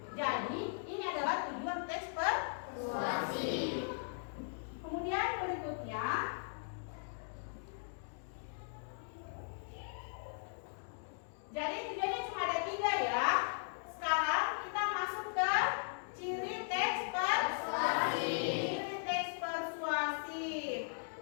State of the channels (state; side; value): silent; right; 52 dB below the other